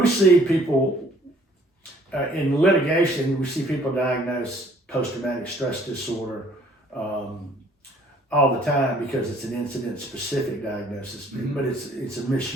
see people, in litigation, we see people diagnosed post-traumatic stress disorder all the time because it's an incident-specific diagnosis, but it's a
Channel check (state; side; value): normal; both; correlation 0.59